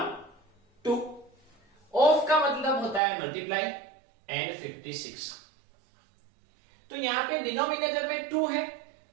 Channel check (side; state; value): left; drops out; at 3.0 s